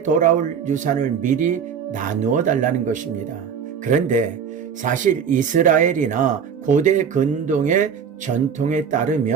돌아올 유산을 미리 나누어 달라는 것입니다. 그런데 사실 이스라엘이나 고대 근동의 전통에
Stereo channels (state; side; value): quieter; left; 7.2 dB